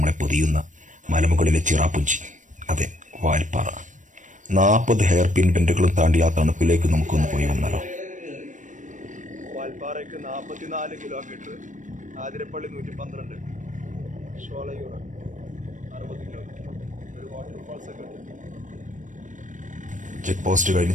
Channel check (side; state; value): left; late; 0.37 ms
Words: പൊതിയുന്ന മലമുകളിലെ ചിറാപ്പുഞ്ചി, അതെ, വാൽപ്പാറ. 40 ഹെയർ പിൻ ബെൻഡുകളും താണ്ടി ആ തണുപ്പിലേക്ക് നമുക്കൊന്ന് പോയി വന്നാലോ. വാൽപ്പാറയ്ക്ക് 44 കിലോമീറ്റർ, ആതിരപ്പള്ളി 112, ഷോളയൂർ 60 കിലോമീറ്റർ, ഒരു വാട്ടർഫാൾസ് ഒക്കെ ഉണ്ട്. ചെക്ക് പോസ്റ്റ് കഴിഞ്ഞ്